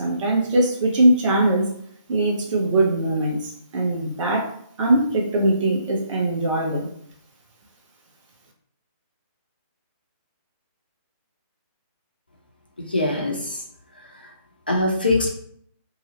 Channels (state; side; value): inverted; both; correlation -0.70